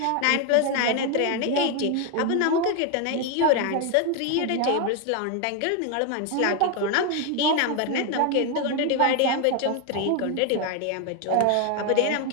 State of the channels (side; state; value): both; different; correlation 0.01